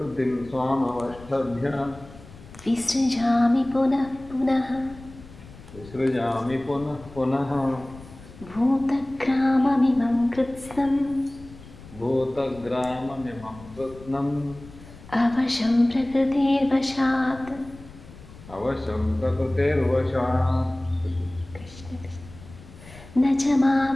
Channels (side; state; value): left; noise; rumble, 19 dB below the sound